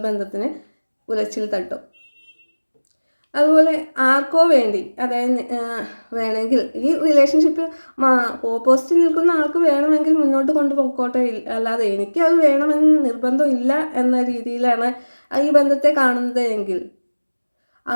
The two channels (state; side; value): inverted; both; correlation -1.00